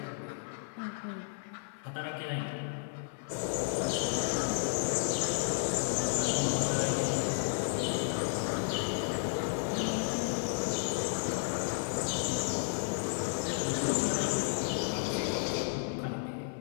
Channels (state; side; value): silent; right; 56 dB below the other